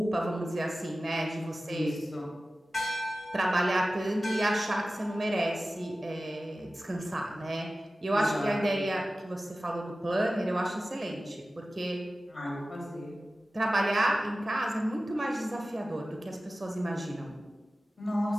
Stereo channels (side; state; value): both; normal; correlation 0.96